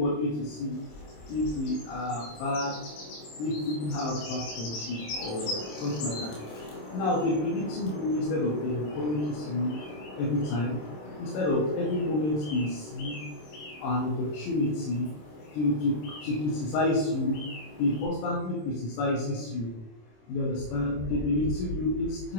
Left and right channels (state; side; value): late; right; 27 ms